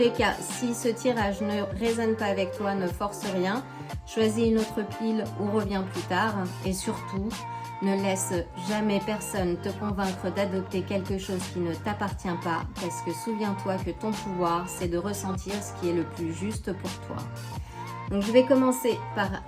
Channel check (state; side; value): identical; both; correlation 1.00